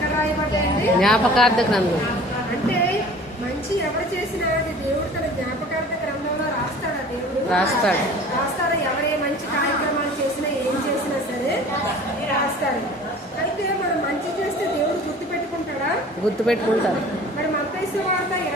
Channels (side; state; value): both; normal; correlation 0.45